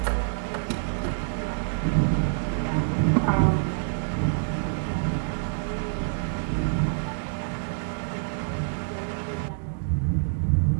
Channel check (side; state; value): left; silent; digital silence